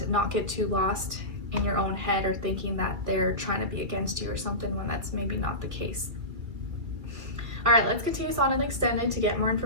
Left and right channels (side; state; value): left; late; 2.2 ms